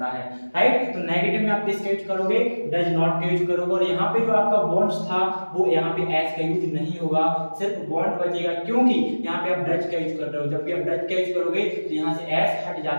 है। राइट, तो नेगेटिव में आप किसका यूज करोगे, डज नॉट का यूज करोगे। और यहाँ पे जो आपका वांट्स था वो यहाँ पे एस का यूज नहीं होगा, सिर्फ वांट बचेगा, क्योंकि यहाँ पे आप डज का यूज कर रहे हो। जब भी आप डज का यूज करोगे तो यहाँ से एस हट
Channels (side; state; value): both; inverted; correlation -1.00